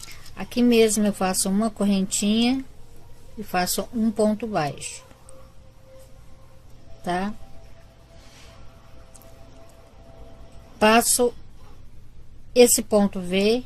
Aqui mesmo eu faço uma correntinha e faço um ponto baixo, tá? Passo esse ponto V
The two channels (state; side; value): identical; both; correlation 1.00